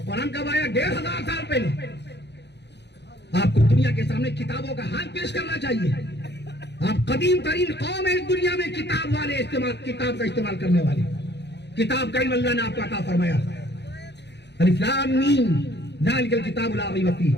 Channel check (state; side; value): late; right; 0.50 ms